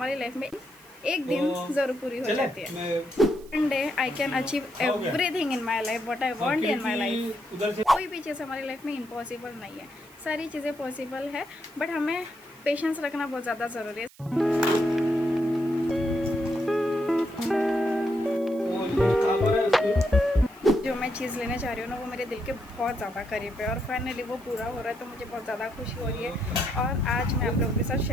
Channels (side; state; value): right; noise; hiss, 25 dB below the sound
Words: लाइफ में एक दिन ज़रूर पूरी हो जाती है। One day I can achieve everything in my life what I want in my life. कोई भी चीज़ हमारी लाइफ में इम्पॉसिबल नहीं है, सारी चीज़ें पॉसिबल है, बट हमें पेशेंस रखना बहुत ज़्यादा ज़रूरी है। जो मैं चीज़ लेने जा रही हूँ ना, वो मेरे दिल के बहुत ज़्यादा करीब है, और फाइनली वो पूरा हो रहा है, तो मुझे बहुत ज़्यादा खुशी हो रही है। और आज मैं आप लोगों के साथ